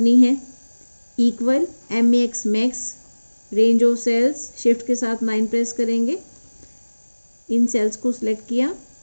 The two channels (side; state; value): both; inverted; correlation -1.00